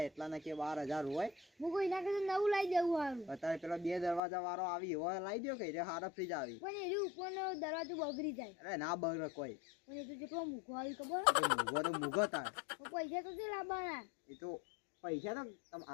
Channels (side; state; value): right; drops out; at 4.2 s